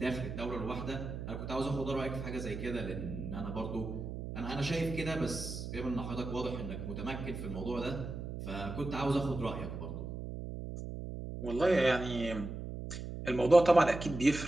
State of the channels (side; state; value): right; noise; hum, 7 dB below the sound